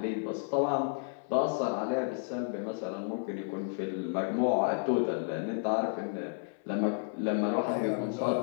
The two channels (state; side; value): silent; right; 57 dB below the other